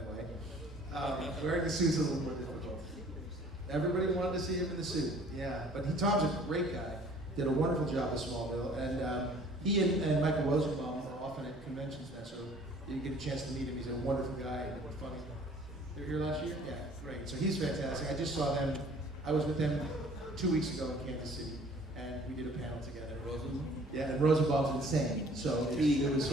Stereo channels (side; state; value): both; normal; correlation 0.53